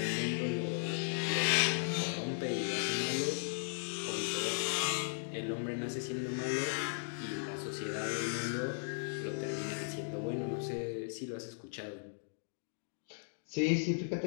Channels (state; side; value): silent; right; digital silence